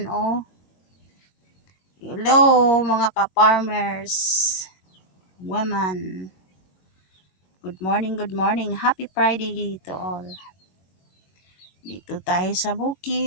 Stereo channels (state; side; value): late; right; 21 ms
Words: oh. Hello mga ka-farmers. Women. Good morning, good morning. Happy Friday to all. Dito tayo sa